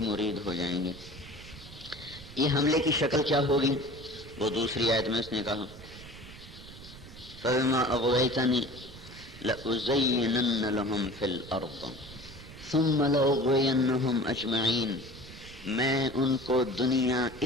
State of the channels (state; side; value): noise; right; rumble, 17 dB below the sound